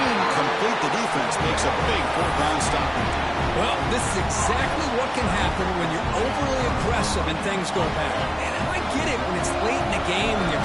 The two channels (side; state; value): both; identical; correlation 1.00